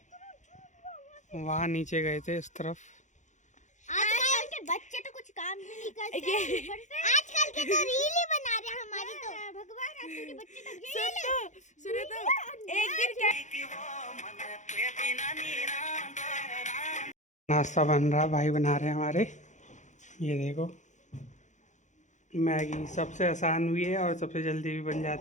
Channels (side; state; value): right; late; 0.35 ms